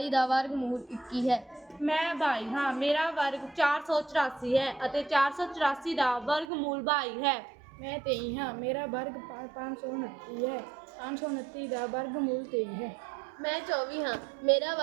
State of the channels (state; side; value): drops out; left; at 6.5 s